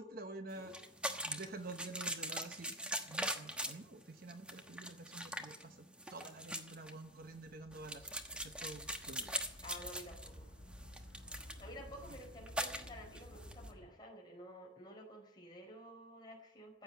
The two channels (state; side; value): normal; both; correlation 0.12